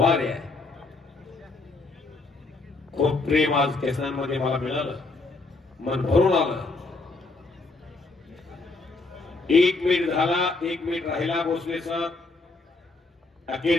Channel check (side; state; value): right; quieter; 3.5 dB